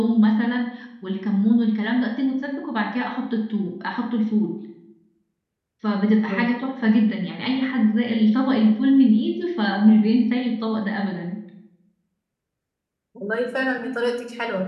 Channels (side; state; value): both; identical; correlation 1.00